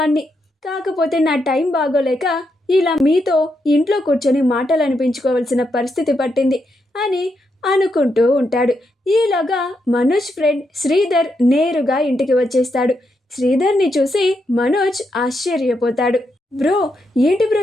కాకపోతే నా టైం బాగోలేక ఇలా మీతో ఇంట్లో కూర్చొని మాటలు అనిపించుకోవాల్సిన పరిస్థితి పట్టింది అని అనుకుంటూ ఉంటాడు. ఈలోగా మనోజ్ ఫ్రెండ్ శ్రీధర్ నేరుగా ఇంటికి వచ్చేస్తాడు. శ్రీధర్ని చూసి మనోజ్ ఆశ్చర్యపోతాడు. బ్రో, ఏంటి బ్రో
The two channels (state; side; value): normal; both; correlation 0.82